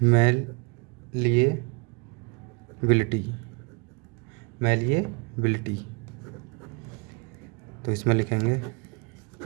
मैलिएबिलिटी। तो इसमें लिखेंगे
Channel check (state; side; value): quieter; left; 32.3 dB